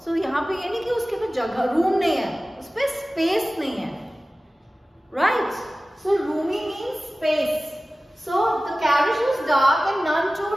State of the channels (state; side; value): normal; both; correlation 0.97